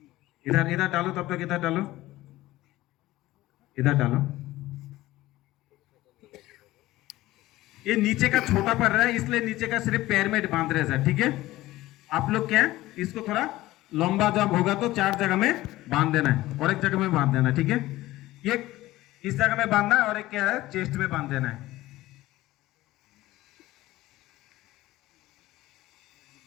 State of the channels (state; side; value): quieter; right; 17.0 dB